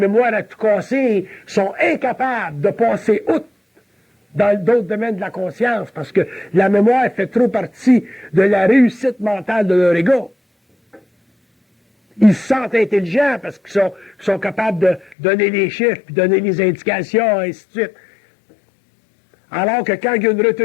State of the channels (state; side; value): drops out; right; at 15.2 s